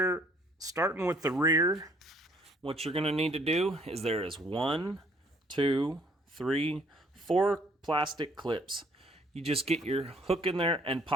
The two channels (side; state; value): both; normal; correlation 0.62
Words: starting with the rear. What you're going to need to do is there is 1, 2, 3, 4 plastic clips. You just get your hook in there and